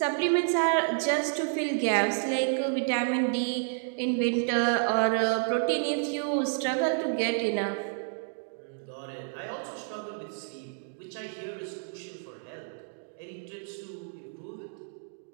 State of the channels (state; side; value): silent; left; digital silence